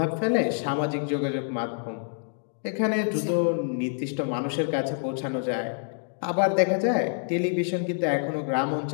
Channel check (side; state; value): right; silent; digital silence